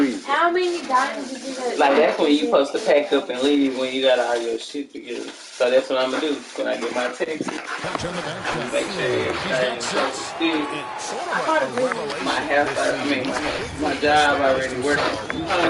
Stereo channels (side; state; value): both; identical; correlation 1.00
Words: How many diamonds did you get? Like, that's when you supposed to pack up and leave when you got all your shit together. So that's what I'm going to do when I get my Texas. Make sure everything's still. My house, my job already working from